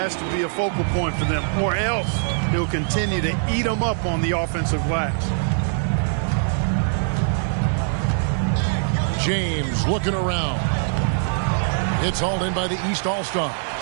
to be a focal point for them, or else he'll continue to eat them up on the offensive glass. James looking around. It's hauled in by the East All-Stars.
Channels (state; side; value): silent; left; digital silence